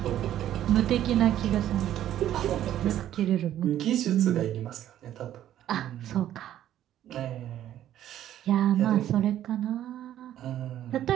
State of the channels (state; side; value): quieter; left; 11.9 dB